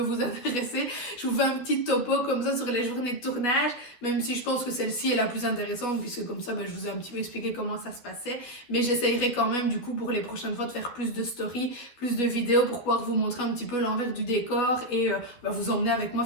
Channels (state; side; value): late; right; 12 ms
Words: intéresser, je vous fais un petit topo comme ça sur les journées de tournage, même si je pense que celle-ci est la plus intéressante, puisque comme ça, je vous ai un petit peu expliqué comment ça se passait. Mais j'essayerai quand même, du coup, pour les prochaines fois, de faire plus de stories, plus de vidéos pour pouvoir vous montrer un petit peu l'envers du décor et vous emmener avec moi